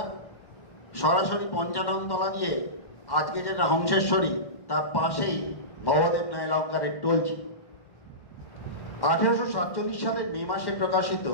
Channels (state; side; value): late; right; 1.1 ms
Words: সরাসরি পঞ্চাননতলা দিয়ে, আজকে যেটা হংসেশ্বরী, তার পাশেই ভবদেব নায়লঙ্কারের টোলজি। 1847 সালের মে মাসে প্রকাশিত